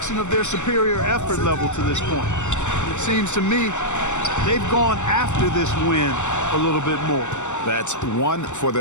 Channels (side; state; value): right; late; 0.84 ms